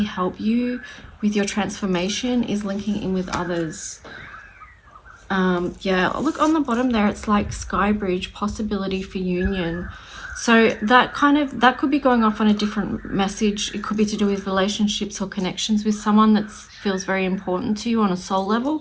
help you with your transformation is linking in with others. Yeah, look on the bottom there, it's like sky bridge, possibility for union. So that could be going off on a different message. It could be to do with relationships or connections with someone that feels very important to you on a soul level.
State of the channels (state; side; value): identical; both; correlation 1.00